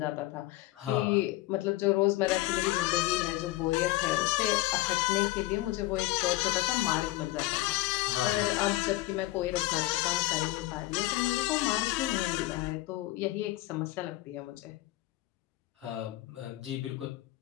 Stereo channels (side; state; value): right; quieter; 17.7 dB